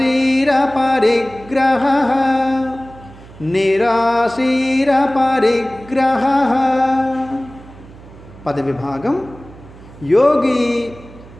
పరిగ్రహః, నిరాశీర పరిగ్రహః. పదవిభాగం. యోగి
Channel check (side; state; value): right; noise; hum, 20 dB below the sound